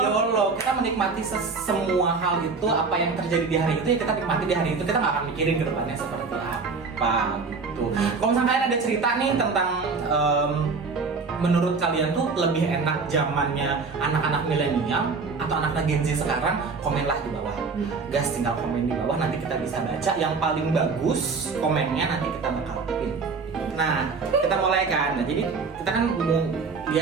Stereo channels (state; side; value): quieter; left; 4.6 dB